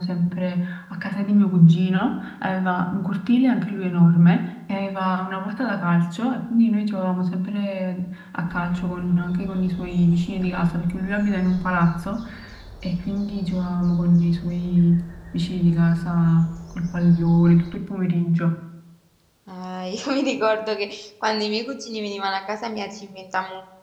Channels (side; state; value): both; identical; correlation 1.00